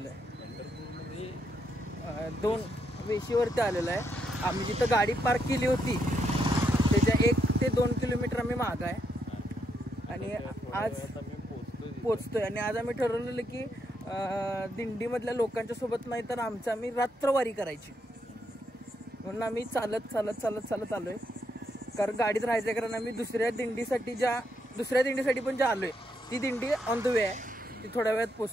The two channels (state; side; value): normal; both; correlation 0.78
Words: आहे. पंढरपूरमध्ये 2 वेशीवरती आलेलो आहे. आम्ही जिथं गाडी पार्क केली होती त्याच्या 1 ते 2 किलोमीटर आम्ही मागं आहे आणि आज पोचतोय. आणि आज आम्ही ठरवलेलं की दिंडीमधल्या लोकांच्या सोबत नाही तर आम्ही रात्रवारी करायची म्हणून आम्ही चालत आलोय. कारण गाडीत राहायचं कारण आम्ही दुसऱ्या दिंडीसाठी पण ज्या आलोय ती दिंडी ऑन द वे आहे. ती थोड्या वेळात